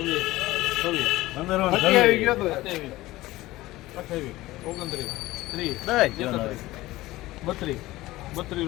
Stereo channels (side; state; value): right; quieter; 17.8 dB